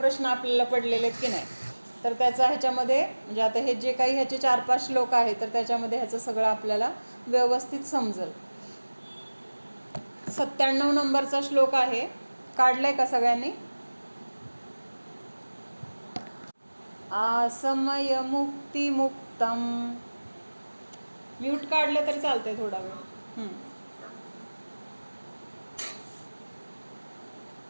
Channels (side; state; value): both; inverted; correlation -1.00